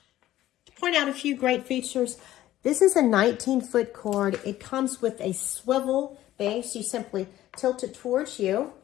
To point out a few great features, this is a 19-foot cord. It comes with a swivel base. You simply tilt it towards you,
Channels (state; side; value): quieter; right; 14.2 dB